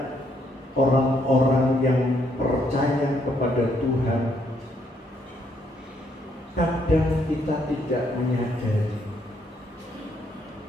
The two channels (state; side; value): normal; both; correlation 0.72